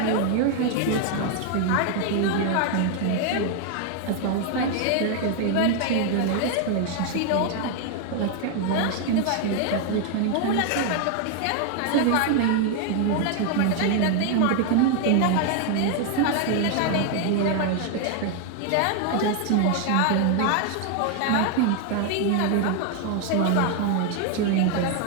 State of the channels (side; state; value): both; different; correlation 0.00